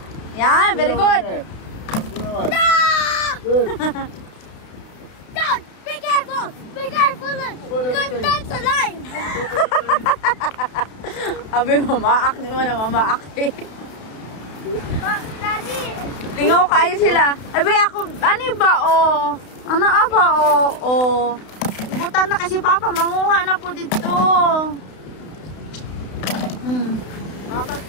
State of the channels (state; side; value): late; right; 32 ms